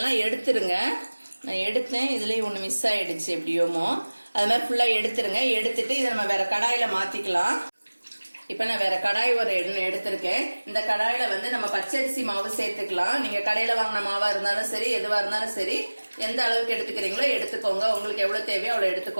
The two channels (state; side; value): inverted; both; correlation -1.00